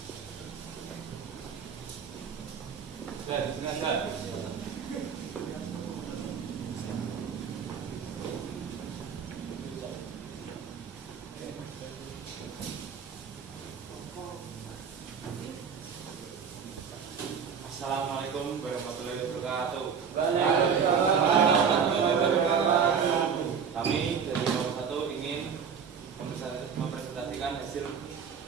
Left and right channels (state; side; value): quieter; left; 6.8 dB